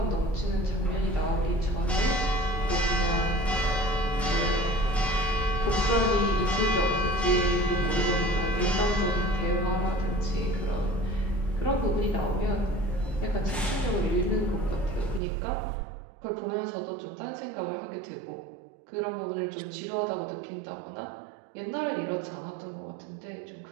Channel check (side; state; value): left; drops out; at 15.2 s